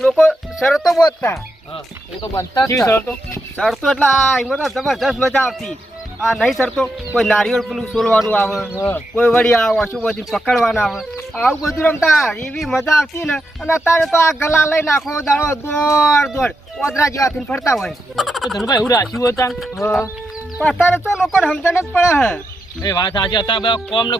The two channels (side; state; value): both; normal; correlation 0.84